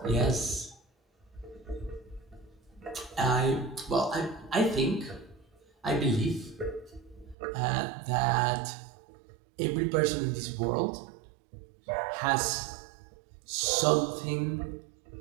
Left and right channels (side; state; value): left; drops out; at 7.4 s